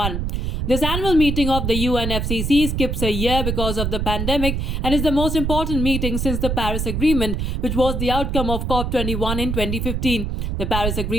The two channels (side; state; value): right; noise; rumble, 1 dB below the sound